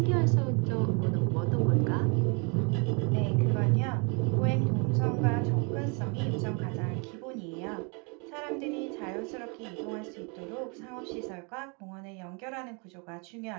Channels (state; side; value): quieter; left; 34.0 dB